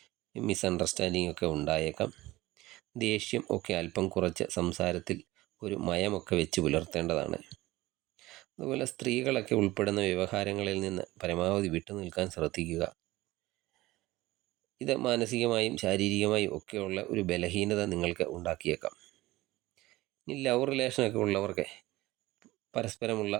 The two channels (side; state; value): left; quieter; 18.5 dB